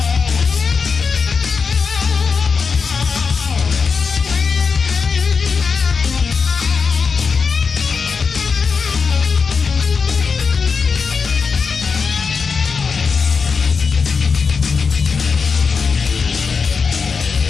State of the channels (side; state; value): right; quieter; 5.3 dB